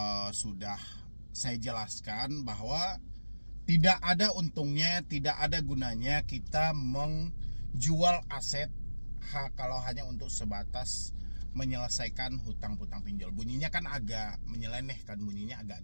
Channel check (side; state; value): both; inverted; correlation -1.00